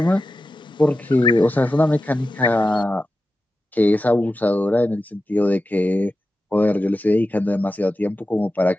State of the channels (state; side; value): normal; both; correlation 0.92